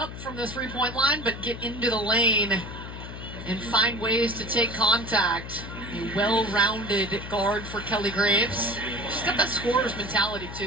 from the three-point line, but get into the lane and find ways to take contact. A well-rounded guard for Kelly Graves. She's got that scorer's mentality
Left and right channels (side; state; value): left; noise; hum, 10 dB below the sound